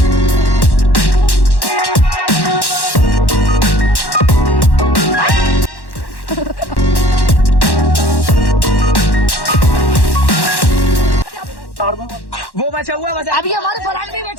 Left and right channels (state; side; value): late; right; 1.1 ms